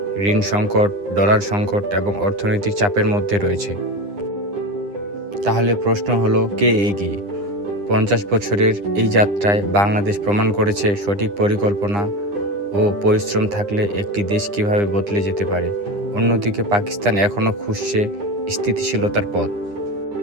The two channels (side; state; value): left; late; 9.9 ms